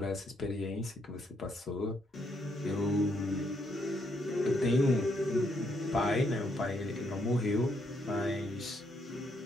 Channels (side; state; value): both; normal; correlation 0.75